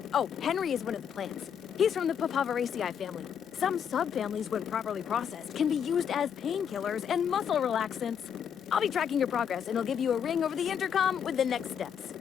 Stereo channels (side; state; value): right; quieter; 8.0 dB